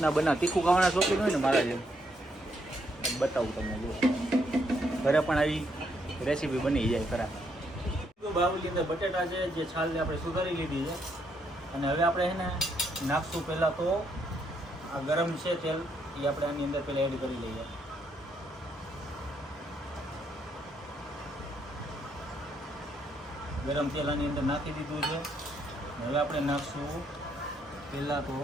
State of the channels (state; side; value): normal; both; correlation 0.74